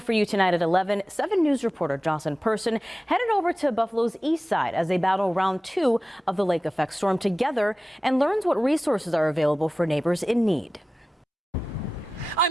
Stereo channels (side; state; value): both; normal; correlation 0.95